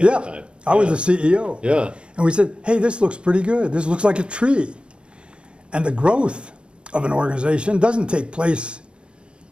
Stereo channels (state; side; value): late; left; 0.055 ms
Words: yeah, at the time. I was the CEO. Yeah. And we said, hey, this looks pretty good. This looks like a tree. And the growth of an organization doesn't take place